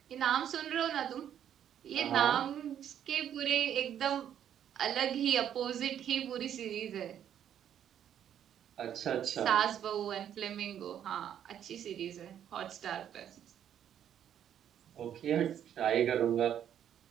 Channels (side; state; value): left; quieter; 9.8 dB